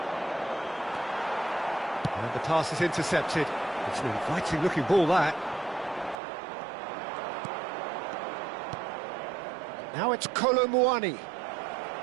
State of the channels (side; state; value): left; drops out; at 6.2 s